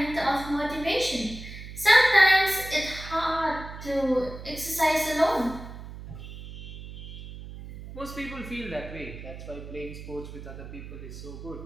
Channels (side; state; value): right; noise; hum, 12 dB below the sound